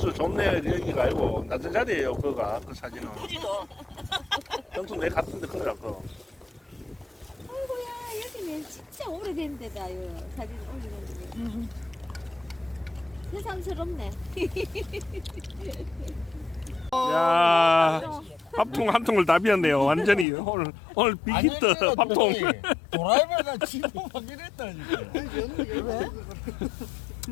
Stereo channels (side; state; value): right; drops out; at 20.2 s